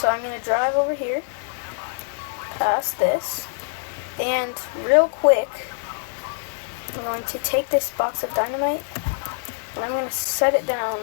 I'm going to drive over here, past this, and real quick, I'm going to take this box of dynamite, and I'm going to set it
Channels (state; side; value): silent; right; digital silence